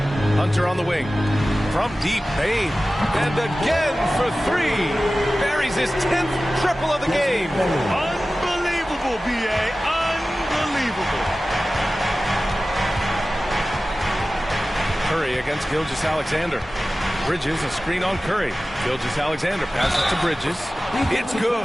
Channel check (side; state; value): both; normal; correlation 0.96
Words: Hunter on the wing. From deep, Bain. And again for 3. Buries his 10th triple of the game. Unbelievable, B.A. Unbelievable. Curry against Gilgeous-Alexander. Bridges, a screen on Curry. Gilgeous-Alexander passes to Bridges. It's